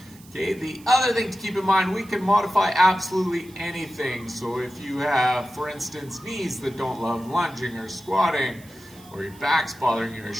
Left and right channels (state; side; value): noise; right; hiss, 24 dB below the sound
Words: Okay, the other thing to keep in mind, we can modify absolutely anything. So if you have, for instance, knees that don't love lunging or squatting, or your back's bothering you, or your